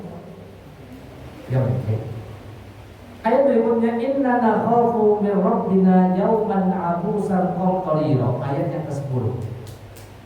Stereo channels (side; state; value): both; identical; correlation 1.00